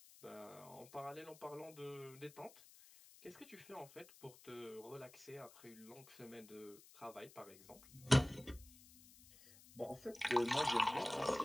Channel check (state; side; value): noise; left; hiss, 21 dB below the sound